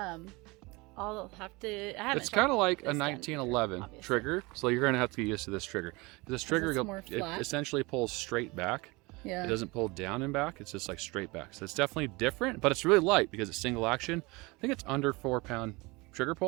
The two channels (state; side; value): quieter; left; 24.8 dB